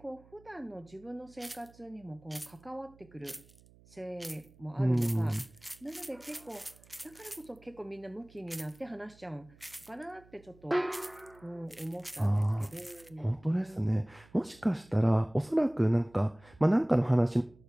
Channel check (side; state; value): right; noise; hum, 26 dB below the sound